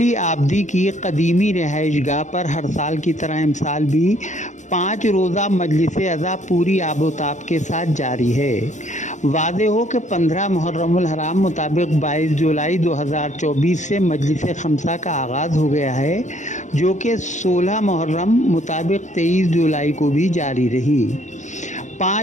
عابدی کی قدیمی رہائش گاہ پر ہر سال کی طرح امسال بھی 5 روزہ مجلس عزا پوری آب و تاب کے ساتھ جاری ہے۔ واضح ہو کہ 15 محرم الحرام مطابق 22 جولائی 2024 سے مجلس خمسہ کا آغاز ہو گیا ہے، جو کہ 16 محرم مطابق 23 جولائی کو بھی جاری رہی۔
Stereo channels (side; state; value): right; late; 0.35 ms